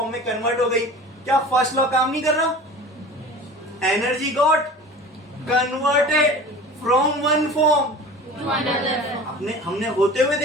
में कन्वर्ट हो गई। क्या फर्स्ट लॉ काम नहीं कर रहा? Energy got converted from one form to another. हमने होते हुए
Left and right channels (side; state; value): both; normal; correlation 0.39